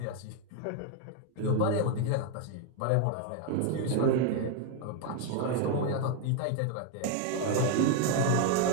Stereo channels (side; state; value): both; different; correlation 0.00